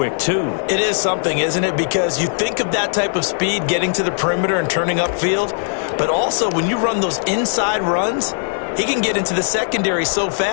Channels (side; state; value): right; silent; digital silence